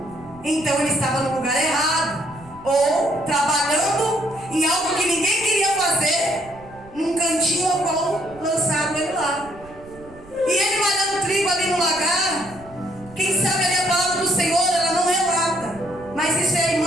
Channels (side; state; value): right; noise; rumble, 21 dB below the sound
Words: Então ele estava no lugar errado. Ou trabalhando em algo que ninguém queria fazer, num cantinho ao qual lançaram ele lá. E ele malhando trigo ali no lagar, quem sabe ali a palavra do Senhor, ela não relata. Mas isso é a